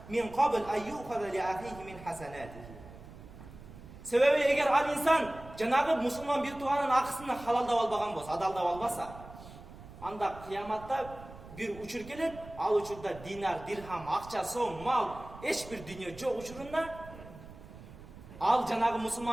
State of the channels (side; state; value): right; noise; rumble, 16 dB below the sound